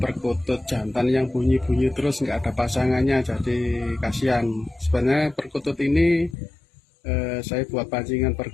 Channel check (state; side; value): drops out; right; at 6.4 s